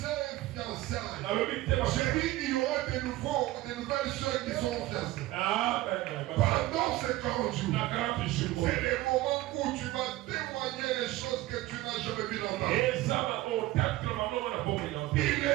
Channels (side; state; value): left; quieter; 17.2 dB